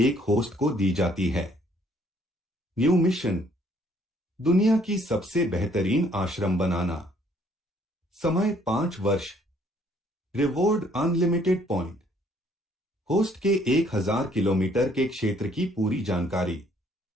host को दी जाती है। न्यू मिशन, दुनिया की सबसे बेहतरीन आश्रम बनाना। समय 5 वर्ष। Reward unlimited point. होस्ट के 1000 किलोमीटर के क्षेत्र की पूरी जानकारी।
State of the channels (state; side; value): normal; both; correlation 0.63